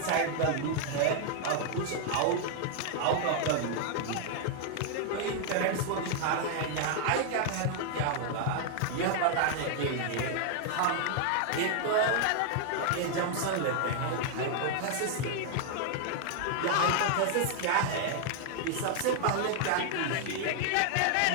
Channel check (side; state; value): both; different; correlation 0.00